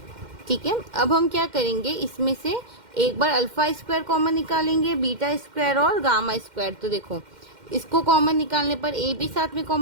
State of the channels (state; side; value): late; left; 2.1 ms